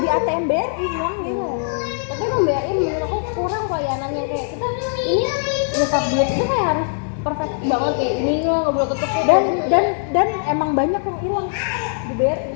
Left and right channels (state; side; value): silent; right; digital silence